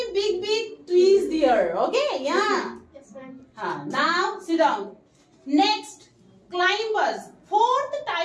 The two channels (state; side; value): identical; both; correlation 1.00